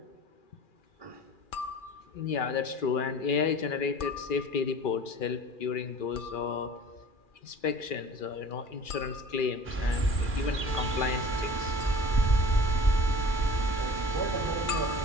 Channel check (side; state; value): right; late; 2.4 ms